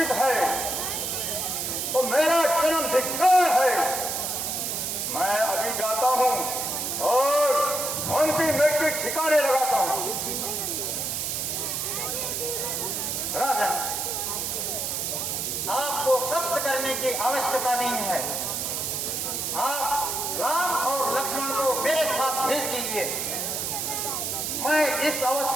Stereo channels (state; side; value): noise; right; hiss, 1 dB below the sound